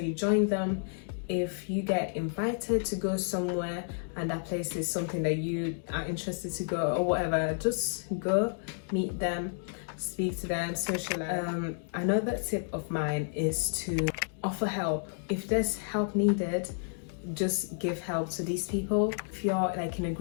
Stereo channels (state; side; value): silent; right; digital silence